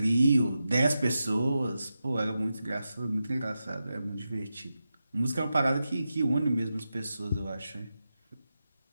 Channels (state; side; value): inverted; both; correlation -0.90